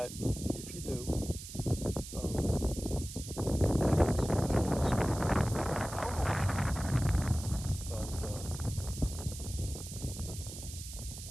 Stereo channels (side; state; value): right; noise; hiss, 11 dB below the sound